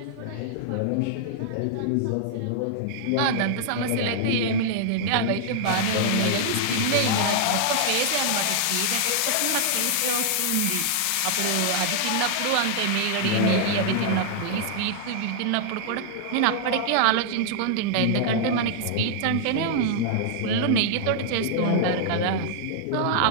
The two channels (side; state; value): both; different; correlation -0.01